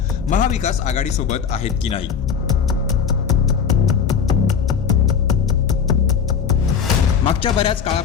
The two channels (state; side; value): quieter; right; 7.0 dB